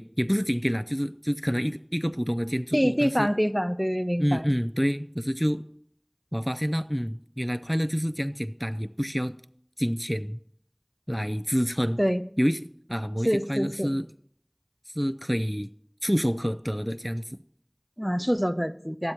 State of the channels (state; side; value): identical; both; correlation 1.00